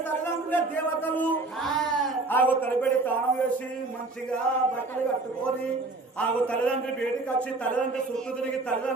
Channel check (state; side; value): quieter; left; 3.3 dB